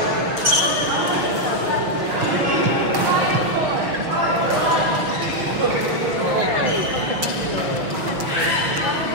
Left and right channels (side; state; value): left; late; 6.2 ms